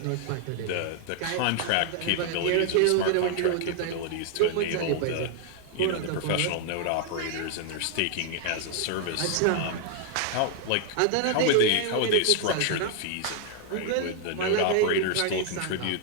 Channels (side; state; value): both; different; correlation 0.00